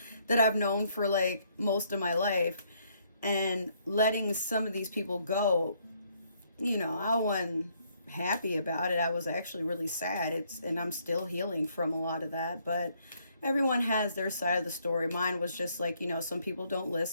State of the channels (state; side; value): inverted; both; correlation -0.69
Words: that I've known for like most of my life, and letting some of these people go. You know, I wasn't happy about it. I was actually really sad. And I'm still healing from a lot of that, but everyone has their side of the story. Mine was just like, you know, some people don't